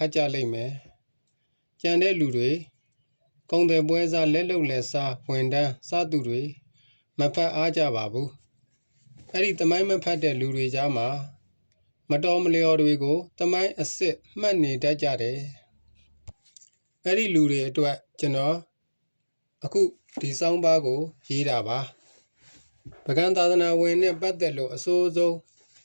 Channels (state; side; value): inverted; both; correlation -1.00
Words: တ်ကြလိမ့်မယ်ကြံတဲ့လူတွေကုံတယ်ပွဲစားလက်လုံလက်စားဝန်တန်းစားသူတွေမဖတ်အားကြပါဘူးအဲ့ဒီသမိုင်းမဖတ်တဲ့လူတွေကြားမှာမတော်မလျော်တွေကိုသမိုင်းအစ်စ်မှတ်နေတတ်ကြတယ်အဲ့ဒီလူတွေအတွက်ကျွန်တော်အခုဒီစောင်းပါးကိုရေးတာပါပကံသာသနာဝင်နဲ့ပတ်သက်လို့အစိုးဆုံး